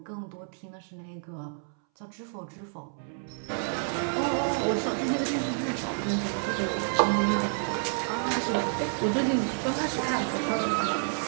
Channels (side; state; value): left; silent; 58 dB below the other